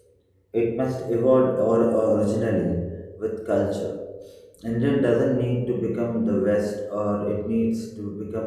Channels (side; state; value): both; identical; correlation 1.00